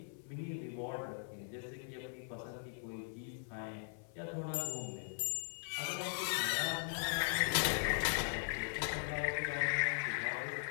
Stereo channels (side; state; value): right; silent; 51 dB below the other